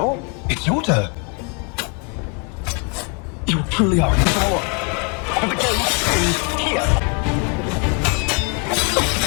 it's your turn. You truly are in power. And the game is here.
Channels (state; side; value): quieter; right; 36.0 dB